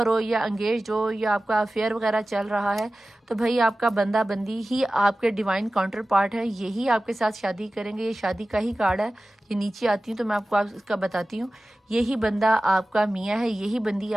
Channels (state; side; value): normal; both; correlation 0.96